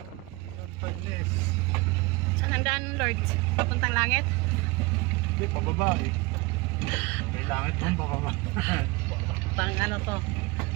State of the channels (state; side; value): quieter; left; 23.9 dB